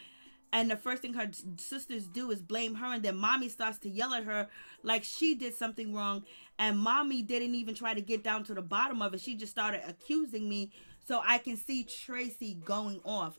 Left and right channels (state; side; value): inverted; both; correlation -1.00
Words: And the first thing her sisters do is blame her, and then mommy starts to yell at her like she did something wrong. And mommy didn't even try to get down to the bottom of it. She just started accusing me. So I can see Tracy going off.